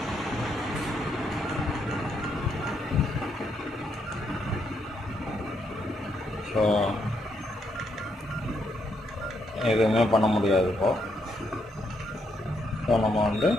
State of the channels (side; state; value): both; normal; correlation 0.77